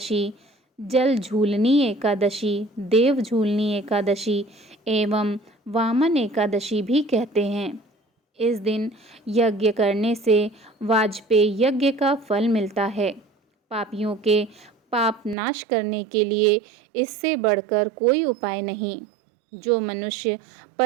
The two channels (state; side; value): drops out; left; at 15.4 s